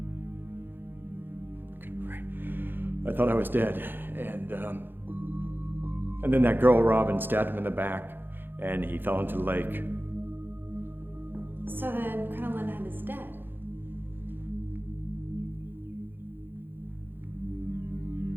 I thought I was dead, and then that girl Robin stabbed him in the back, and he fell into the lake. So then Crinoline Head is dead.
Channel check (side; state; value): left; late; 0.098 ms